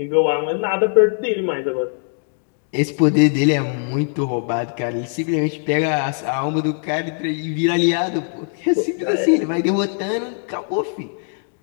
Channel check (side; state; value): right; silent; 59 dB below the other